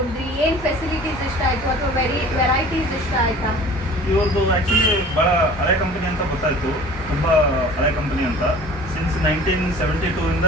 ಏನ್ ಫೆಸಿಲಿಟೀಸ್ ಇಷ್ಟ ಆಯ್ತು ಅಥವಾ ವೆರೈಟೀಸ್ ಇಷ್ಟ ಆಯ್ತಾ? ಇವ್ರದ್ದು ಆ್ಯಕ್ಚುಲಿ ಭಾಳ ಹಳೆ ಕಂಪನಿ ಅಂತ ಗೊತ್ತಾಯಿತು, ತುಂಬ ಹಳೆ ಕಂಪನಿ ಅಂತ. ಸಿನ್ಸ್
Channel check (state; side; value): normal; both; correlation 0.44